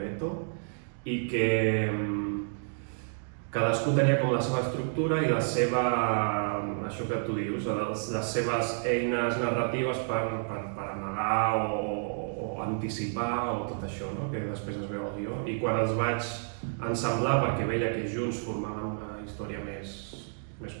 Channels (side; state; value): left; silent; digital silence